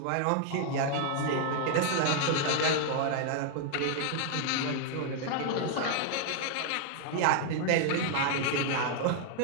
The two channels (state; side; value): different; both; correlation 0.00